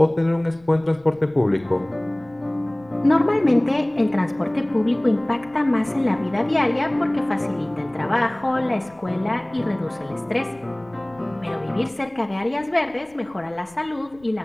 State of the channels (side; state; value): left; noise; rumble, 28 dB below the sound